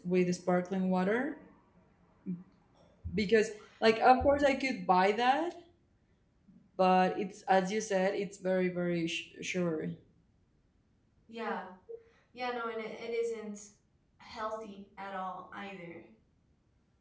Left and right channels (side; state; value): both; identical; correlation 1.00